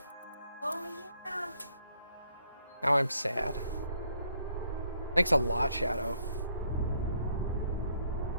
Oh yeah. Now I'm sad. Thanks a lot, Shadow.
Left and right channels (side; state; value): both; inverted; correlation -0.69